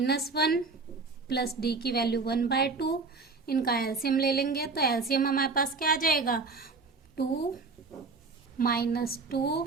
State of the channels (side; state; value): left; quieter; 4.1 dB